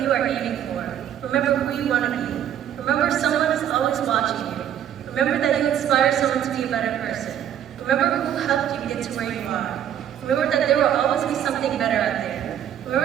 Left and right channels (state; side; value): quieter; left; 10.2 dB